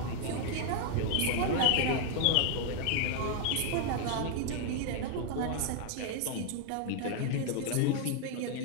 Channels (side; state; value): both; different; correlation 0.00